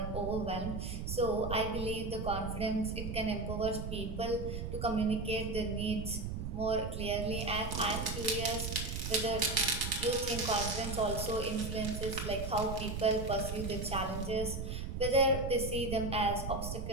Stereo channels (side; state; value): right; noise; rumble, 5 dB below the sound